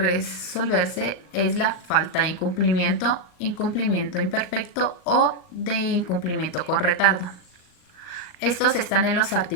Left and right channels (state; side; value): late; right; 39 ms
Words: es la falta de incumplimiento, incumplimiento imperfecto o de incumplimiento con retardo. Estos están en los